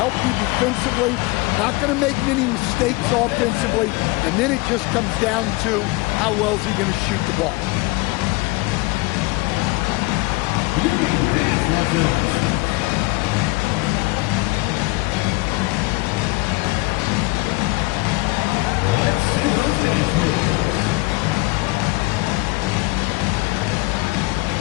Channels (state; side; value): quieter; right; 23.7 dB